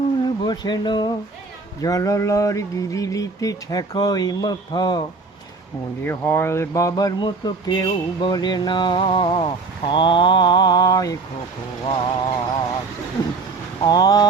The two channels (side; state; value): left; quieter; 4.0 dB